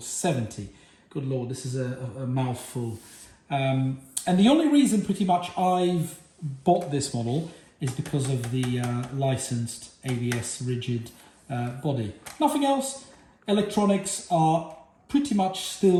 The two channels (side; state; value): both; identical; correlation 1.00